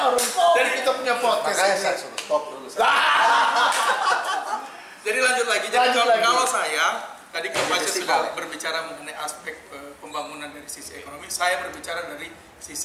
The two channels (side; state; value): both; identical; correlation 1.00